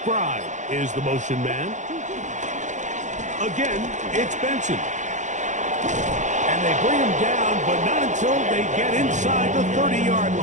is the motion man. Again, it's Benson. And they bring him down, but not until they get inside the 30-yard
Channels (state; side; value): late; left; 0.35 ms